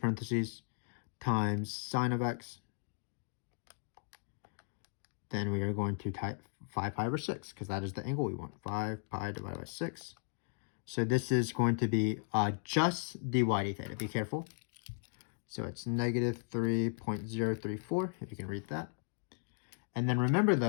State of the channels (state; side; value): silent; right; 54 dB below the other